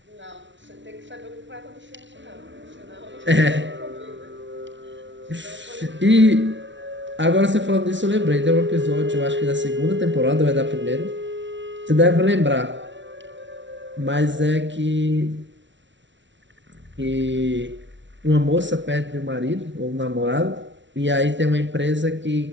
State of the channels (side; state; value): left; late; 0.54 ms